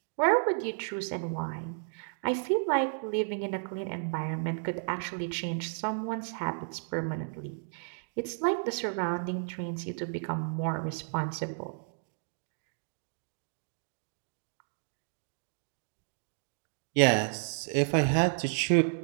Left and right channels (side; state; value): left; silent; digital silence